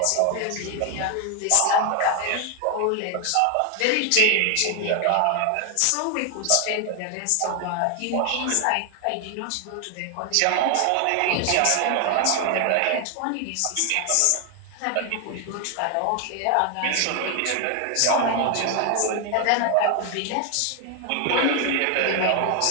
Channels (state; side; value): different; both; correlation 0.01